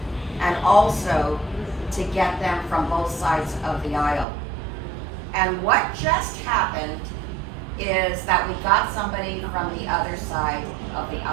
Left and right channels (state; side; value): drops out; left; at 4.2 s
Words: and also to get them from both sides of the aisle. And what just happened is that we got somebody from the other side of the